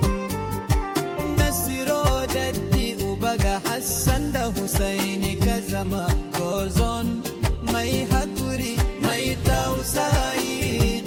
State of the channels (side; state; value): both; identical; correlation 1.00